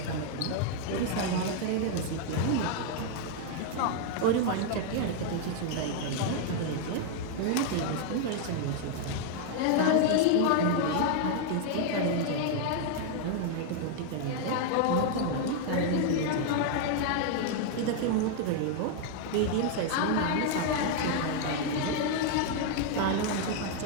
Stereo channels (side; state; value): both; different; correlation 0.00